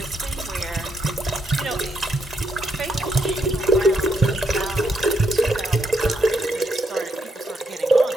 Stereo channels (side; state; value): both; normal; correlation 0.78